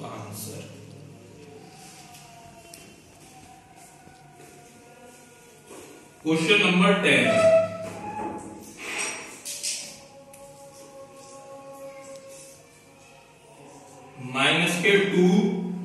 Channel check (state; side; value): identical; both; correlation 1.00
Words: आंसर। क्वेश्चन नंबर 10, माइनस के 2